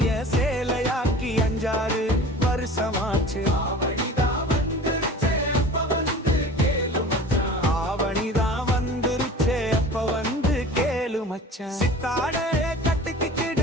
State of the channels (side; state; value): both; normal; correlation 0.40